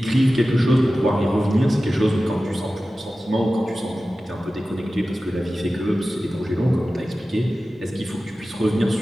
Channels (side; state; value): both; normal; correlation 0.95